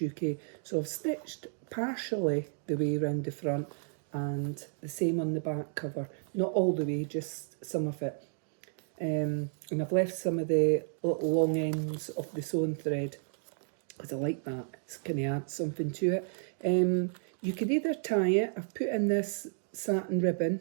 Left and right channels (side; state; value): left; silent; digital silence